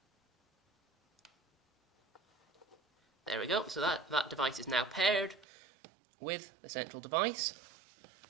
There we go, so that device is now paired with the central device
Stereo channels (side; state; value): left; drops out; at 5.5 s